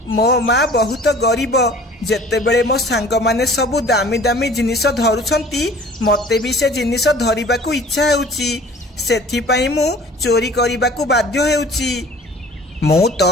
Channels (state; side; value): normal; both; correlation 0.48